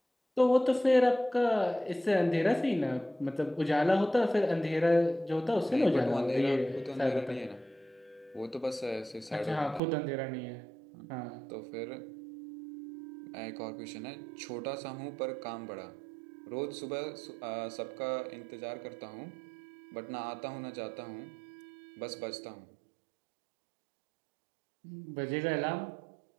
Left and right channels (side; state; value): left; drops out; at 9.8 s